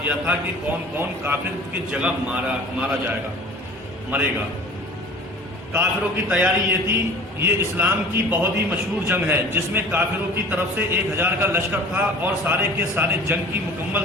دیا تھا کہ کون کون کافر کی جگہ مارا جائے گا، مرے گا۔ کافروں کی تیاری یہ تھی، یہ اسلام کی بہت ہی مشہور جنگ ہے جس میں کافروں کی طرف سے 1000 کا لشکر تھا اور سارے کے سارے جنگ کی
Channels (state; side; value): normal; both; correlation 0.44